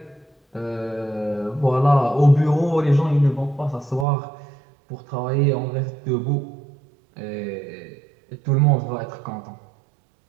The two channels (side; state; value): left; drops out; at 4.0 s